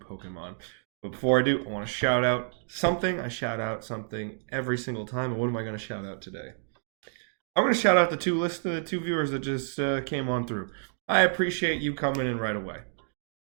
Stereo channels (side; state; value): left; silent; digital silence